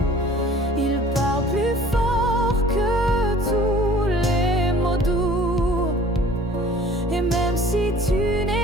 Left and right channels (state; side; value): normal; both; correlation 0.49